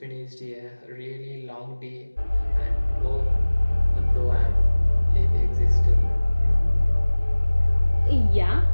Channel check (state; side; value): inverted; both; correlation -1.00